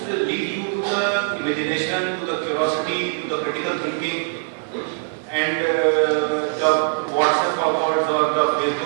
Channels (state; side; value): silent; left; 56 dB below the other